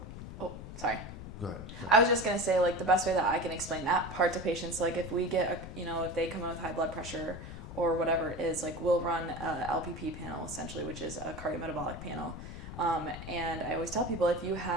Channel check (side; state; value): left; noise; rumble, 10 dB below the sound